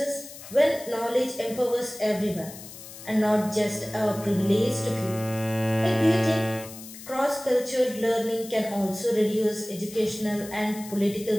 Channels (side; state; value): left; noise; hiss, 15 dB below the sound